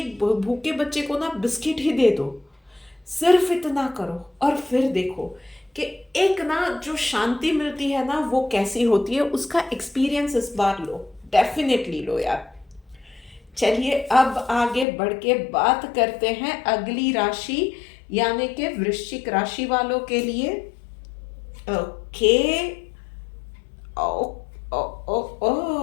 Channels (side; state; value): right; drops out; at 14.9 s